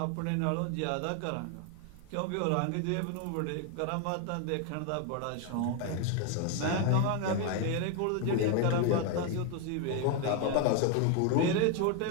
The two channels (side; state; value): both; different; correlation 0.01